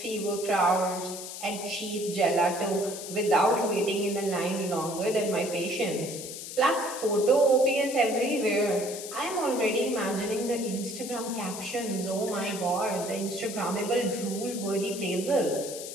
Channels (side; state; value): left; noise; hiss, 9 dB below the sound